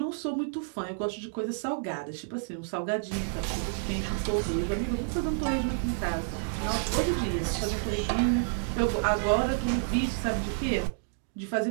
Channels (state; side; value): silent; left; digital silence